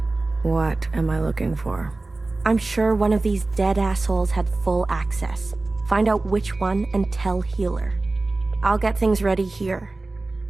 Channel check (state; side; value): quieter; left; 3.2 dB